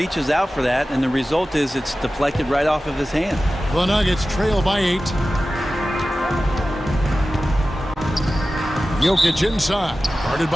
out for that, and the result is it's deflected right off of his hand. The Nuggets trail by 8. Jokic inside, guarded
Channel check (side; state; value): both; normal; correlation 0.95